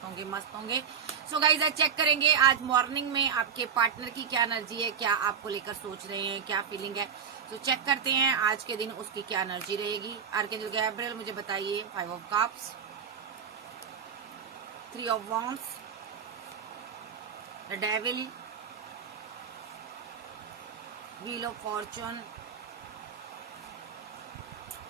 होंगे, मस्त होंगे। सो गाइज आज चेक करेंगे आज मॉर्निंग में आपके पार्टनर की क्या एनर्जी है, क्या आपको लेकर सोच रहे हैं, क्या फीलिंग है। तो चेक करते हैं आज के दिन उसकी क्या एनर्जी रहेगी। आर्कएंजल गैब्रिएल मुझे बताइए। 5 of cups, 3 of wands, the devil, wheel of Fortune,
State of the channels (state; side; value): quieter; left; 7.0 dB